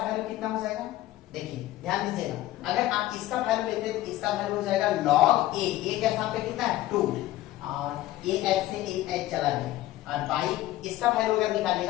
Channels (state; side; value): quieter; right; 15.4 dB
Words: कितना हो जाएगा। देखिए ध्यान दीजिएगा, अगर आप इसका वैल्यू लेते हैं तो इसका वैल्यू हो जाएगा log a, a के स्थान पे कितना है 2 और a h से a h चला गया, और बाई इसका वैल्यू अगर